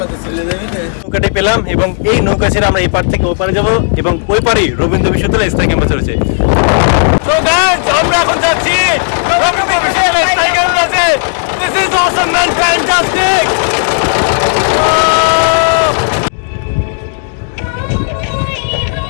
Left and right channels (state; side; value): silent; right; digital silence